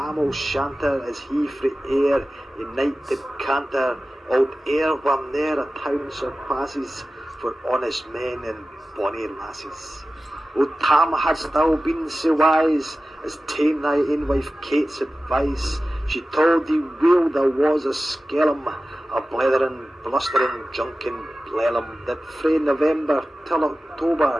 O'Shanter, as he frae air in night did canter, old air where ne'er a town surpasses for honest men and bonny lasses. O Tam, hadst thou been so wise as ta'en thy ain wife Kate's advice, she told thee weel there was a skellum, a blethering, blustering, drunken blellum, that frae November till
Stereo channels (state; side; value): normal; both; correlation 0.95